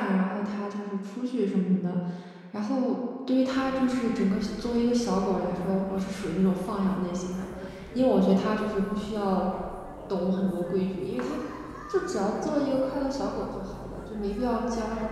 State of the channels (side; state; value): both; identical; correlation 1.00